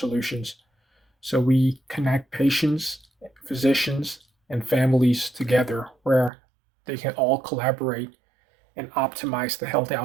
So we connect patients, physicians, and families together where they can all collaborate and optimize the health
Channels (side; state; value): left; drops out; at 6.3 s